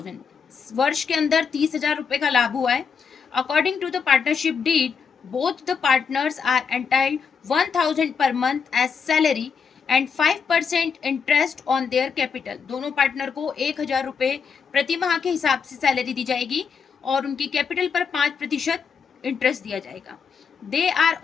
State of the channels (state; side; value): quieter; right; 6.2 dB